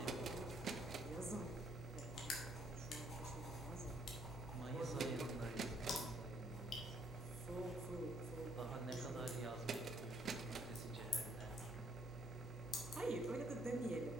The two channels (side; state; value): both; normal; correlation 0.67